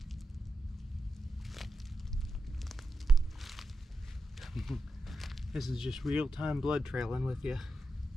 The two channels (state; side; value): normal; both; correlation 0.87